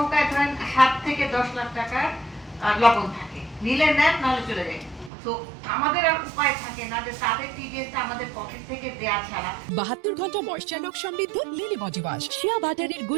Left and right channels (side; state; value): left; drops out; at 5.1 s